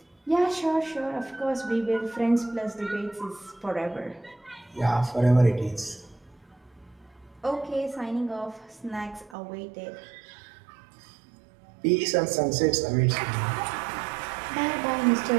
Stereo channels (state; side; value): drops out; left; at 9.3 s